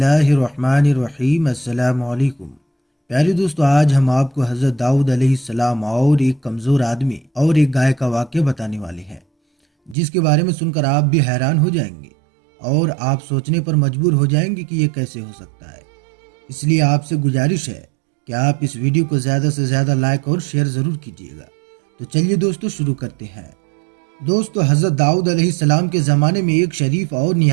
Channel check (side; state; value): left; drops out; at 10.0 s